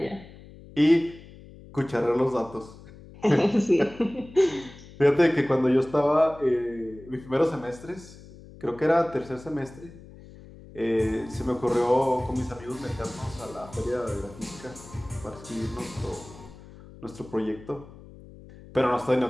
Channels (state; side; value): noise; left; hum, 19 dB below the sound